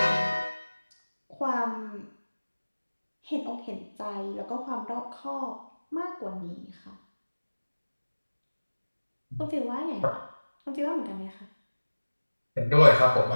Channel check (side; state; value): both; inverted; correlation -1.00